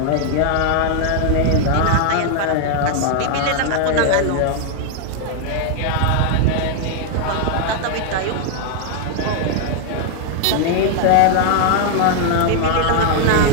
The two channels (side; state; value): both; different; correlation 0.00